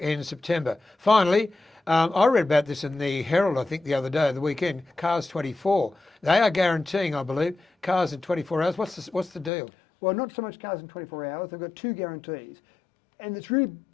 September. Finally, I read about this in the Herald, I think, the other day, the weekend. Cars 24. They are guaranteeing, I believe, cars in 24 hours. What's the deal? Well, not so much cars in 24 hours. They've got 2 guarantees. And it's really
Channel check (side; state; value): right; drops out; at 9.5 s